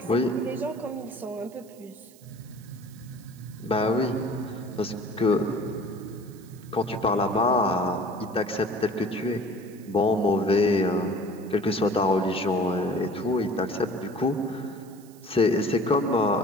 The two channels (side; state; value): right; noise; hiss, 25 dB below the sound